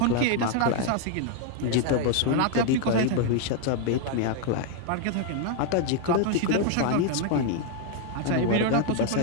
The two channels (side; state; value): both; different; correlation 0.00